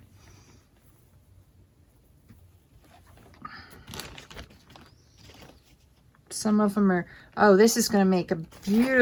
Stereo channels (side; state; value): both; identical; correlation 1.00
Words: Some of them are, oh, this is going to make a